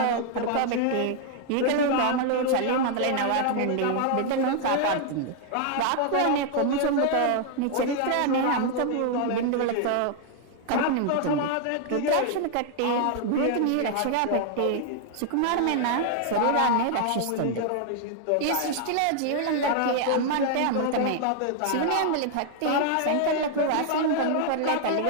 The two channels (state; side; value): different; both; correlation 0.00